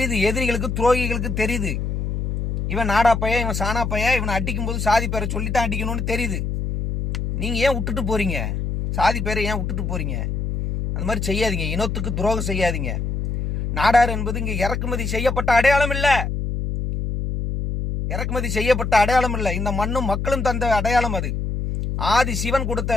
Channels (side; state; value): left; noise; hum, 2 dB below the sound